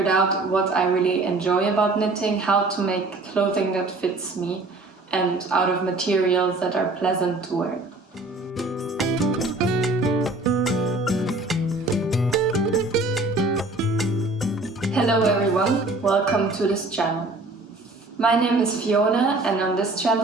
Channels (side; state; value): left; quieter; 3.0 dB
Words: out what I really enjoy about knitting, how to make clothing that fits me and out of materials that are pleasant to wear. Hello everyone, welcome to this channel. My name is Fiona, and on this